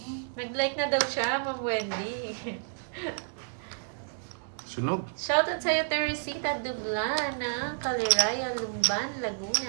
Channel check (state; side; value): silent; left; digital silence